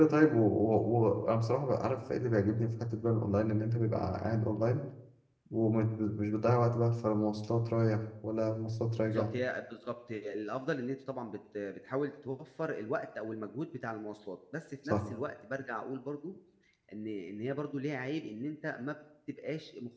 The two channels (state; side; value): identical; both; correlation 1.00